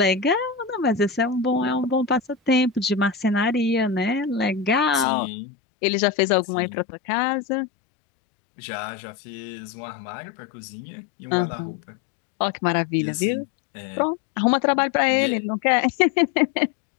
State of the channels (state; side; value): drops out; right; at 5.1 s